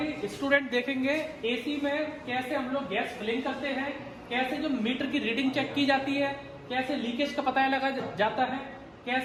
स्टूडेंट देखेंगे एसी में कैसे हम लोग गैस फिलिंग करते हैं, कैसे जो मीटर की रीडिंग चेक की जाती है, कैसे लीकेज का पता लगा जाता है,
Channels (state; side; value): identical; both; correlation 1.00